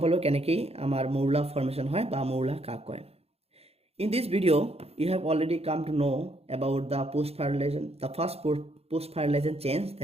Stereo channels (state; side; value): late; left; 0.29 ms